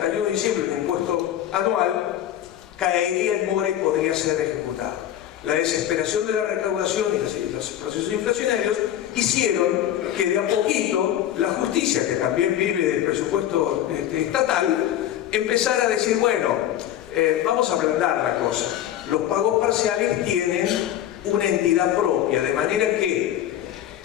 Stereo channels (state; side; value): quieter; right; 11.6 dB